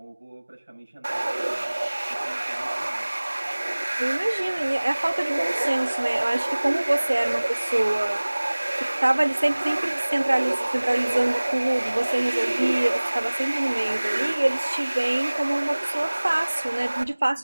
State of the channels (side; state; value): both; inverted; correlation -1.00